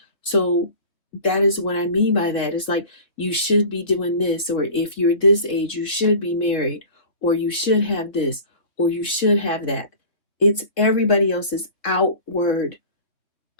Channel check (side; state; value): right; late; 3.0 ms